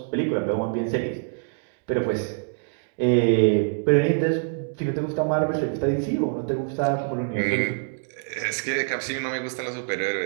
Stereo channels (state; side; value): silent; left; digital silence